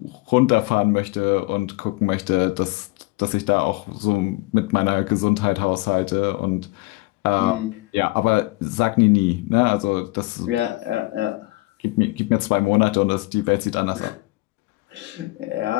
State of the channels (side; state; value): right; quieter; 22.5 dB